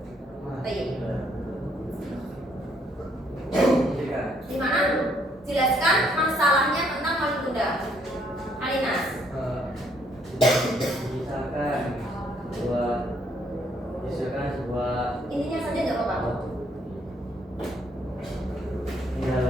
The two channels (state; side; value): normal; both; correlation 0.68